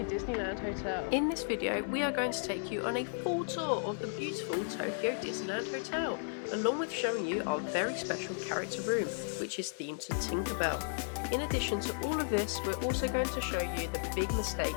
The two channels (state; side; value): silent; right; 55 dB below the other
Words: Disneyland Hotel. In this video, we are going to take you on a full tour of the beautiful Tokyo Disneyland Hotel, along with showing you our very special character room, which is themed to Tinkerbell. In addition to all of this, we're also going to show you the big mistake